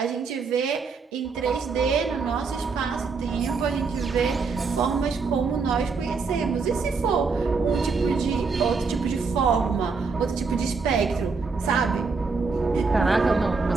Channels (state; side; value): quieter; left; 4.7 dB